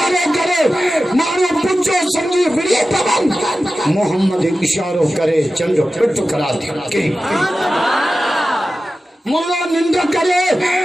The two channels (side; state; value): both; normal; correlation 0.94